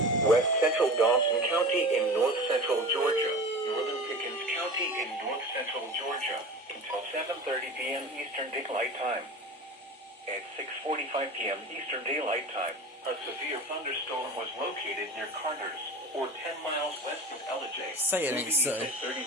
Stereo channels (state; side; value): normal; both; correlation 0.34